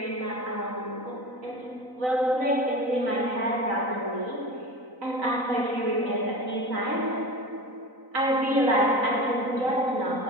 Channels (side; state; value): left; late; 4.0 ms